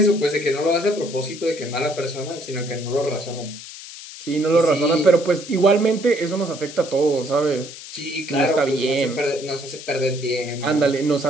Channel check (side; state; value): left; noise; hiss, 14 dB below the sound